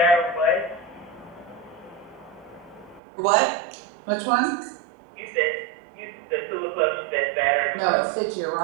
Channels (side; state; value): left; drops out; at 3.0 s